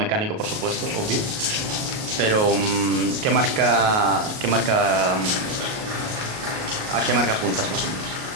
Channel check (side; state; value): left; late; 38 ms